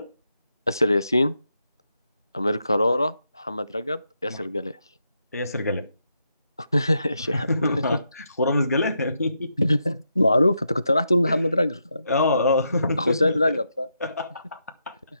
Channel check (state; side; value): inverted; both; correlation -0.82